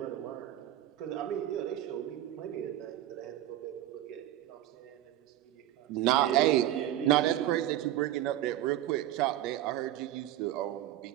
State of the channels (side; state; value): left; quieter; 13.1 dB